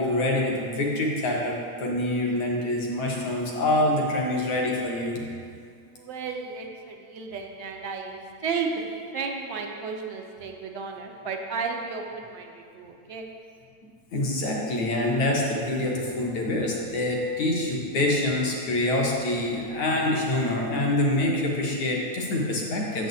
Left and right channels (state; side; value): late; right; 9.4 ms